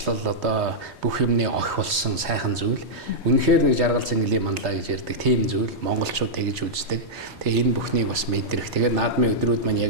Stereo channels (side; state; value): both; normal; correlation -0.08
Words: одоо бүх юмны охи болсон сайхан зүйл. Үнэхээр нэг жаргал цэнгэлийн манлаа гэж ярьдаг тийм зүйл монголчууд тэгж үздэг. Тэгээ энэ бүхнийг бас мэдрэх. Тэгээд наадмын өдрүүд маань